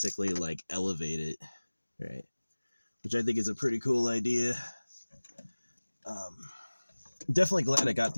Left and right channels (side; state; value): both; inverted; correlation -1.00